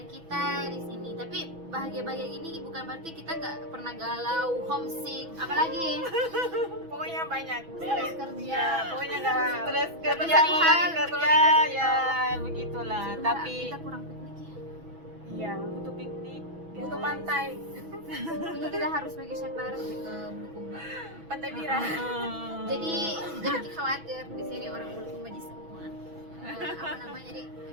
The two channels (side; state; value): left; late; 6.1 ms